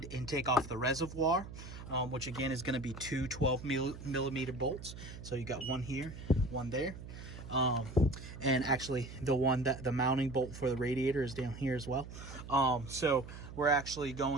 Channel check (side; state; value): right; noise; hum, 12 dB below the sound